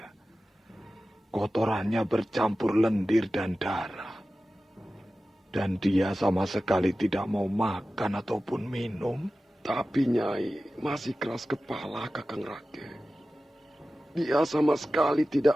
Kotorannya bercampur lendir dan darah. Dan dia sama sekali tidak mau makan ataupun minum. Tapi Nyai masih keras kepala, Kakang Rake. Dia sama sekali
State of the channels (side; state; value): both; normal; correlation 0.95